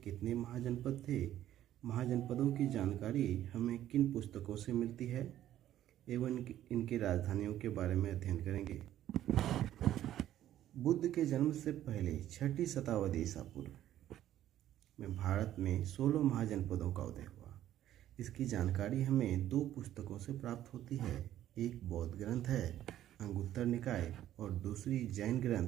महाजनपद थे, महाजनपदों की जानकारी हमें किन पुस्तकों से मिलती है एवं इनकी राजधानियों के बारे में अध्ययन करेंगे। बुद्ध के जन्म से पहले 6ठी शताब्दी ईसा पूर्व में भारत में 16 महाजनपदों का उदय हुआ। इसकी जानकारी हमें दो पुस्तकों से प्राप्त होती है। एक बौद्ध ग्रंथ है अंगुत्तर निकाय और दूसरी जैन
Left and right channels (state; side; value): quieter; left; 12.4 dB